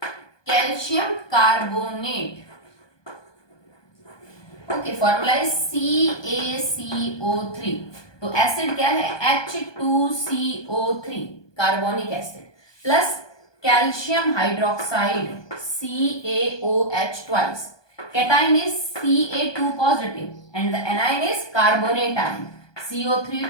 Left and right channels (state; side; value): late; right; 1.2 ms